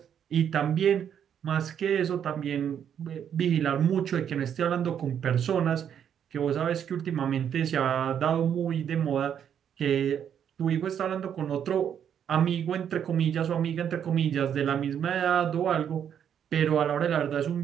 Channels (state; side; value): quieter; left; 8.8 dB